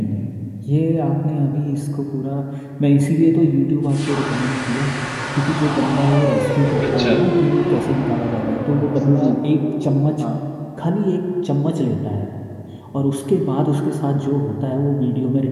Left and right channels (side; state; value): both; identical; correlation 1.00